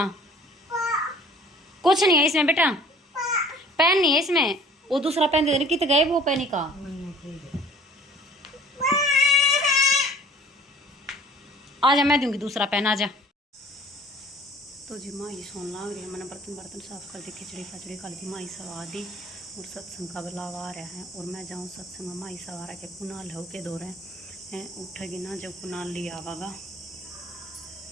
कुछ नहीं है इसमें बेटा, पेन नहीं है इसमें। वो दूसरा पेन दे, कितने गए वो पेन का। आजा मैं दूंगी दूसरा पेन, आजा। तो जी माँ ये सोन लाग रही है, मैंने बर्तन साफ कर दी, खिचड़ी खचड़ी खा दी, माई सवा दी। और सत्संग का बुलावा आ रहा है और मैं जाऊँ सत्संग में। माई सवा रहा के कुनाल हो के दो रहे हैं, उठेगी ना जब कुनाल लिया आवागा।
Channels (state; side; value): normal; both; correlation 0.50